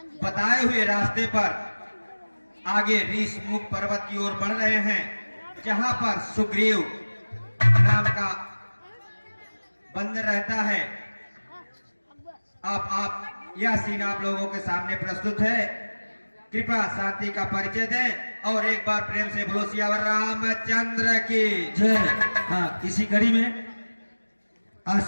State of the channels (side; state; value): both; inverted; correlation -1.00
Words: बताए हुए रास्ते पर आगे ऋषमुख पर्वत की ओर बढ़ रहे हैं, जहां पर सुग्रीव नाम का बंदर रहता है। आप यह सीन आप लोगों के सामने प्रस्तुत है। कृपया शांति का परिचय दें और एक बार प्रेम से बोलो सियावर रामचंद्र की जय। हाँ, इसी कड़ी में